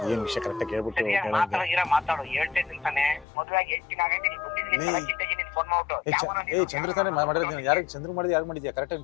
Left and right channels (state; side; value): drops out; right; at 3.2 s